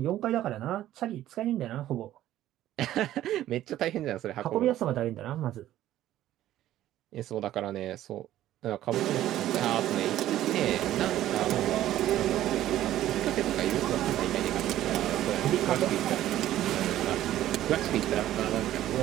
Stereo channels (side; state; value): left; quieter; 13.3 dB